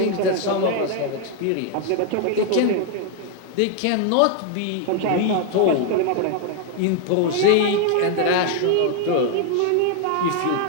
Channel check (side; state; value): both; different; correlation 0.00